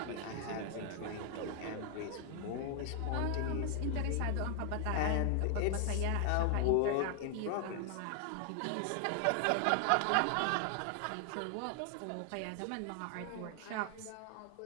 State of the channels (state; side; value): different; both; correlation 0.00